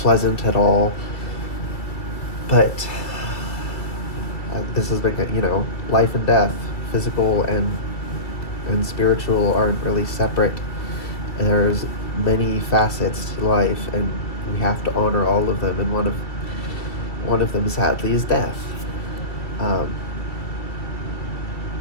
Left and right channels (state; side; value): late; right; 2.0 ms